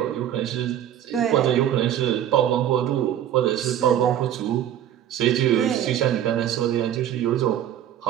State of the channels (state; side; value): quieter; left; 10.9 dB